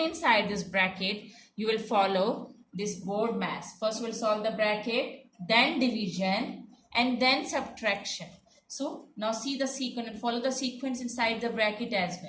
inside this bracket you will follow this board mass. First we will solve the bracket, then division and then subtraction. So now see the sequence and follow the sequence inside the bracket as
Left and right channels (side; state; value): both; identical; correlation 1.00